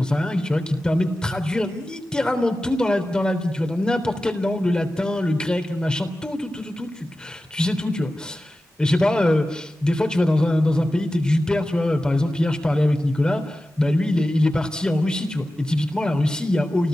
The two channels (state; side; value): normal; both; correlation 0.94